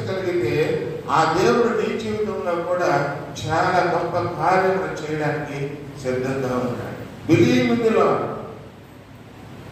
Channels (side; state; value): both; identical; correlation 1.00